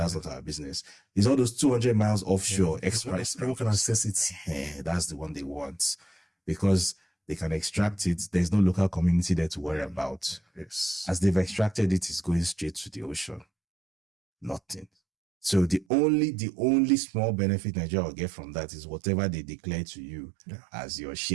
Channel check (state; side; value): drops out; left; at 15.9 s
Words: not our business. It's all those 200 miles offshore express. Everyone can access it. That's the one they want because they can extract it. There's no local community there to worry about. Yes. As they've extracted it, it's going straight to the ocean. Nothing. So the only small benefit Nigeria will get from that is whatever they declare to you as your